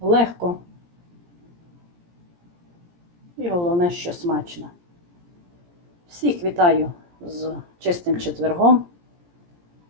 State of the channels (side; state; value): left; late; 17 ms